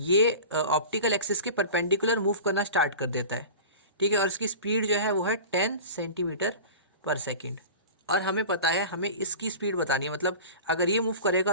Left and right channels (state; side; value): inverted; both; correlation -0.35